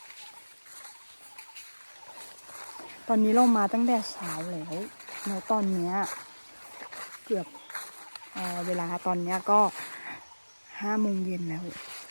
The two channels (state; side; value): inverted; both; correlation -1.00